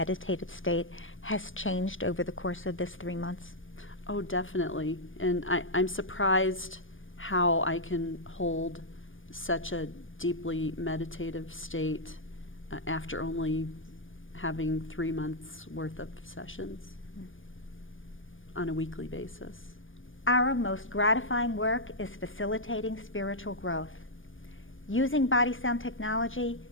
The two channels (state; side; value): late; right; 0.58 ms